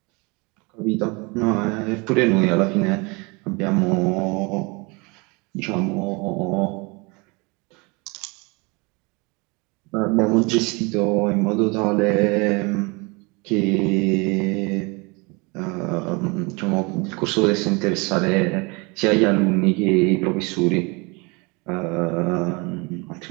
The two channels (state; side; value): quieter; left; 28.2 dB